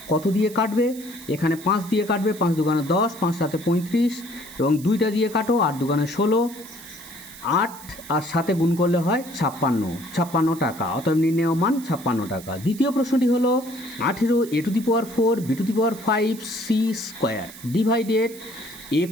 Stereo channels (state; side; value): noise; right; hiss, 17 dB below the sound